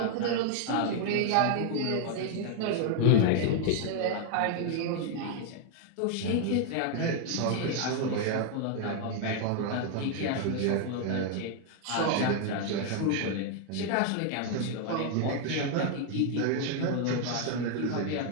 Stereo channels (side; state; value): both; different; correlation 0.01